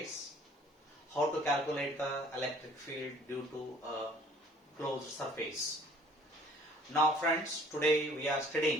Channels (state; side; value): normal; both; correlation 0.55